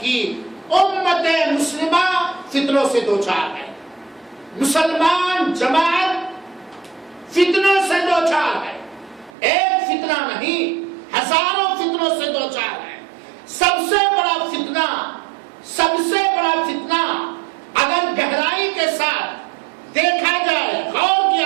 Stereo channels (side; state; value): left; drops out; at 9.3 s